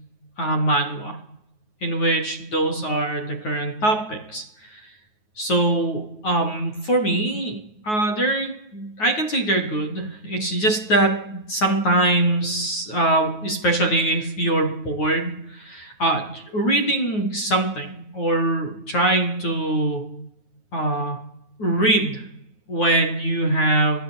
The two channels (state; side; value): late; right; 9.4 ms